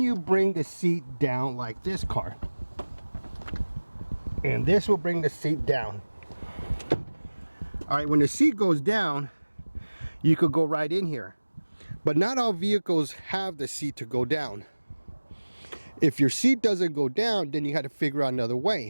you bring the seat down like this car? And this will bring the seat down. All right, when the seat goes down, you could go right in here. But not all vehicles have the seat to go down. If your seat doesn't go down, then you got to figure out another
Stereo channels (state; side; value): inverted; both; correlation -1.00